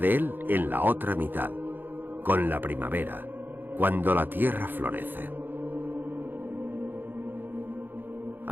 él en la otra mitad, con la primavera, cuando la tierra florece.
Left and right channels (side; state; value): left; late; 0.093 ms